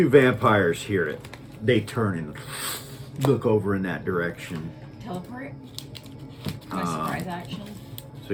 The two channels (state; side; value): identical; both; correlation 1.00